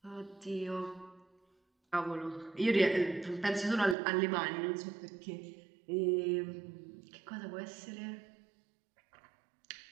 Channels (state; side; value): drops out; left; at 4.0 s